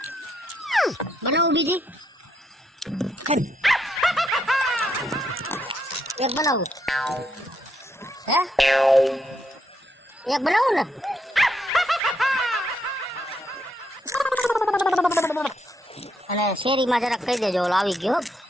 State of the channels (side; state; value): both; normal; correlation 0.77